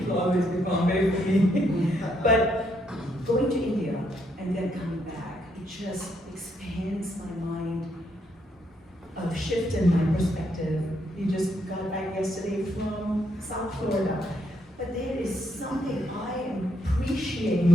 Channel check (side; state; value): both; normal; correlation 0.75